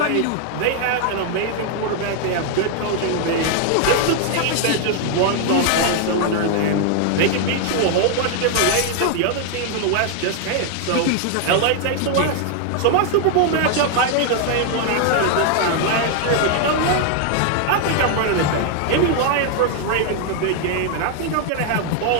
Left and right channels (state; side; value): different; both; correlation 0.00